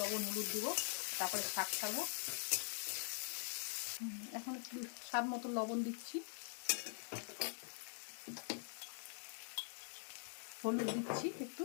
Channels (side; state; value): right; silent; digital silence